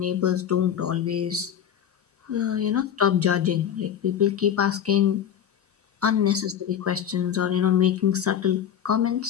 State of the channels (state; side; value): quieter; right; 9.1 dB